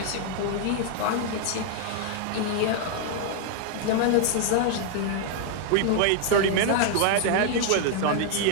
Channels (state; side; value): different; both; correlation 0.00